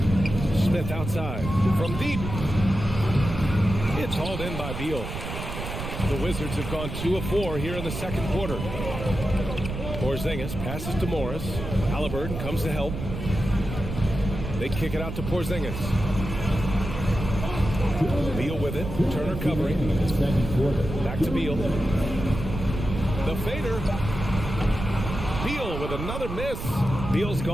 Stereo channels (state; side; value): noise; right; rumble, 6 dB below the sound